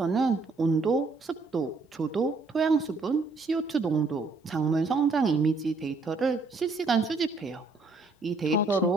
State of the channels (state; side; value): quieter; left; 3.8 dB